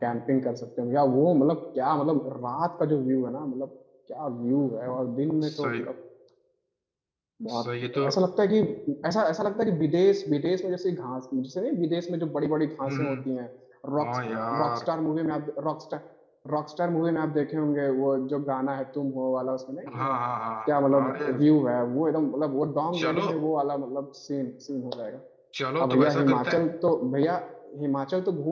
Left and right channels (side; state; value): both; identical; correlation 1.00